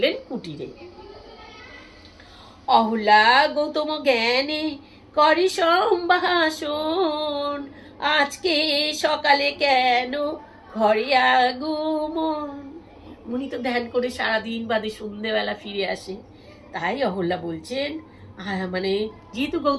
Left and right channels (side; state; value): both; identical; correlation 1.00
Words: কুটিরে। অহল্যা গৌতম জ্ঞানে করি সম্ভাষণ, আজকে সকালে কেন ঘরে আগমন। মুনি তো ধ্যান করে সারাদিন বাদে সন্ধ্যেবেলা ফিরে আসে, তাই অহল্যা বলছেন, মানে যেহেতু